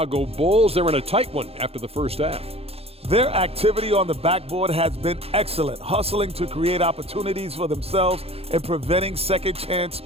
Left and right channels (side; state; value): left; late; 0.29 ms